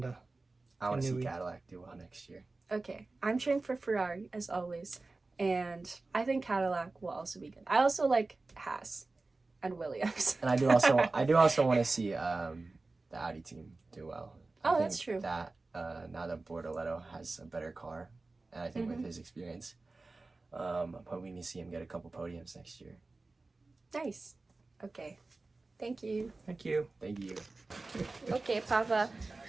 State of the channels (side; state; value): left; quieter; 3.4 dB